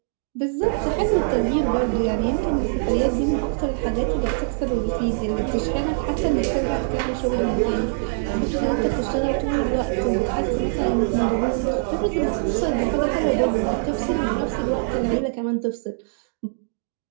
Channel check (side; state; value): left; silent; digital silence